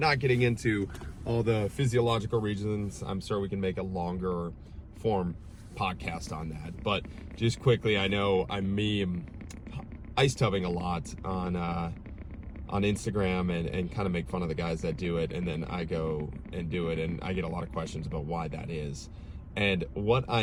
getting into all the physiological reasons. I'm sure we can make a longer form podcast on that. But just quickly, I know I meme ice tubbing a lot on Instagram and kind of make fun of the guys that do it, and then I go and do it, and I get a lot of questions about why that is. And what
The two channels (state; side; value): identical; both; correlation 1.00